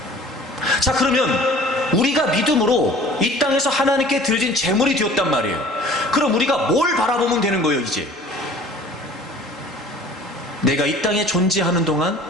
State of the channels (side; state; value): both; normal; correlation 0.47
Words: 자, 그러면 우리가 믿음으로 이 땅에서 하나님께 드려진 제물이 되었단 말이에요. 그럼 우리가 뭘 바라보면 되는 거예요? 이제 내가 이 땅에 존재하는 동안